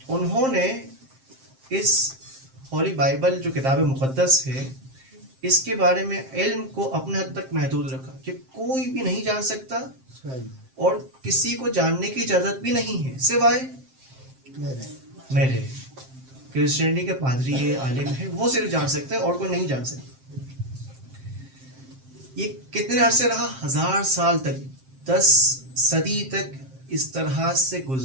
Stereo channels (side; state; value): left; late; 7.6 ms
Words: انہوں نے اس ہولی بائبل جو کتاب مقدس ہے اس کے بارے میں علم کو اپنے حد تک محدود رکھا کہ کوئی بھی نہیں جان سکتا، اور کسی کو جاننے کی اجازت بھی نہیں ہے سوائے میرے. کرسچینٹی کے پادری ہے، عالم ہے، وہ صرف جان سکتے ہیں اور کوئی نہیں جان سکتا. یہ کتنے عرصے رہا؟ 1000 سال تک، 10 صدی تک اس طرح سے